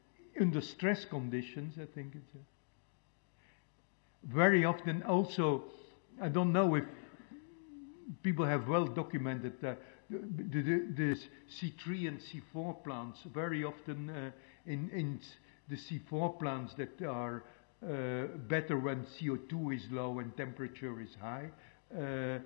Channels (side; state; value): right; silent; digital silence